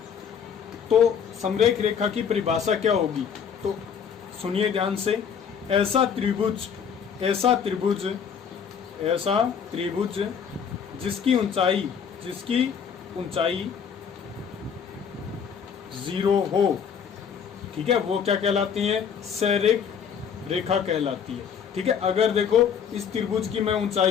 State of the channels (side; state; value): right; quieter; 7.2 dB